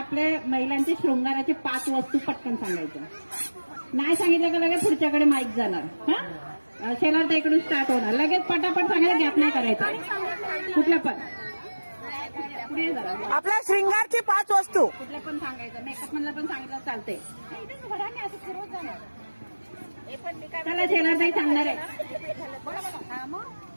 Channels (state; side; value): inverted; both; correlation -1.00